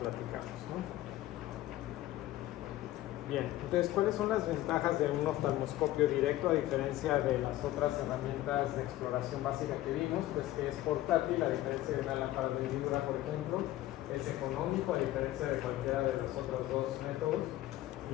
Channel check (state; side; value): quieter; right; 15.2 dB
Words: ¿no? Bien, entonces, ¿cuáles son las ventajas de un oftalmoscopio directo a diferencia de las otras herramientas de exploración básica que vimos? Pues que es portátil, a diferencia de una lámpara de hendidura, por ejemplo. Es económico, a diferencia de cualquiera de los otros dos métodos.